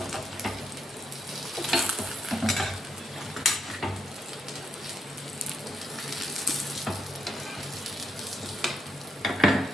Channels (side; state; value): both; normal; correlation 0.80